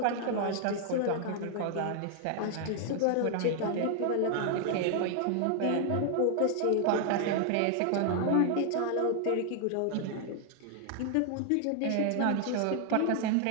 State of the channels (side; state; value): both; different; correlation 0.00